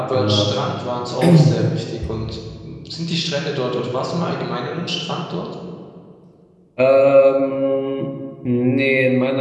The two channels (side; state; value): both; identical; correlation 1.00